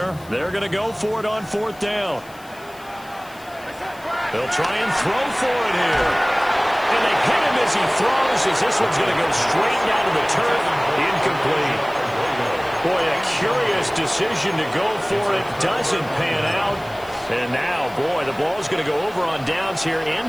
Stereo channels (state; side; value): noise; left; hiss, 24 dB below the sound